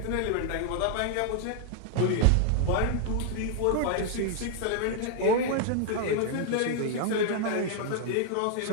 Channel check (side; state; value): both; different; correlation 0.00